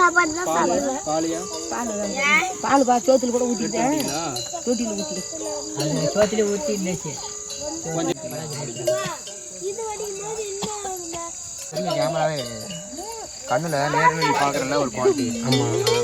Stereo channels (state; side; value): identical; both; correlation 1.00